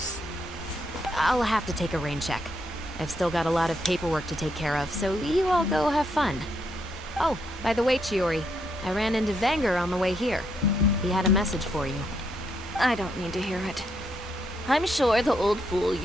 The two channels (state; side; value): normal; both; correlation 0.77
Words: I'll have to take a rain check. I've still got a lot of paperwork to take care of, so you all go have fun. Oh, by the way, Chiori, I ran into Vanger on the way here. He had a message for you. I don't need to hear it. I'm sure the old fool